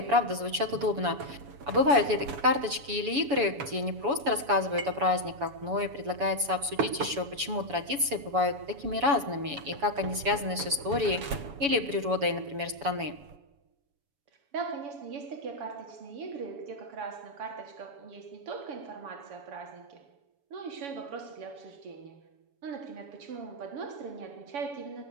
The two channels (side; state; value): left; late; 7.1 ms